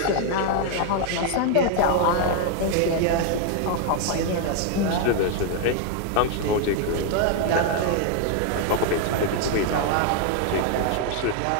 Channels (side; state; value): both; different; correlation 0.01